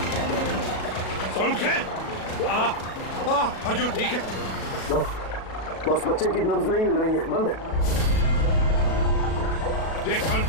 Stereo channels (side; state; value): right; late; 37 ms